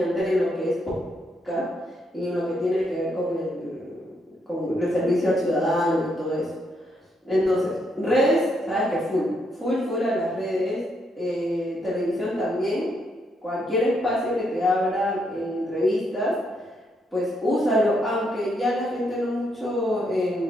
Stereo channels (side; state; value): both; normal; correlation 0.76